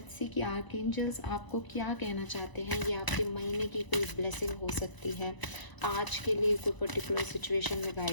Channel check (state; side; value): late; right; 1.0 ms